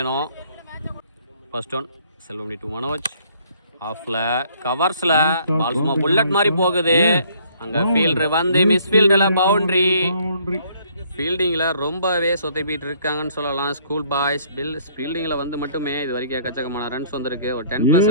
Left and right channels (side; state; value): both; inverted; correlation -0.62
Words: First one Selvamani to Manoj. ஆஃப்ல கவர்ஸ்ல பால் சும்மா புல்லட் மாதிரி போகுது. அங்கே ஃபீல்டர் வந்து மிஸ் ஃபீல்டில் பவுண்டரி. ஃபீல்டிங்கில் ரொம்பவே சொத்தைப்பிட்டு இருக்காங்கன்னு சொல்லலாம் ஸ்கூல் பாய்ஸ். ஃபீல்டிங்கில் வந்து மட்டுமே இது வரைக்கும் எக்கச்சக்கமான ரன்ஸ் வந்திருக்கு. ஒரு 10+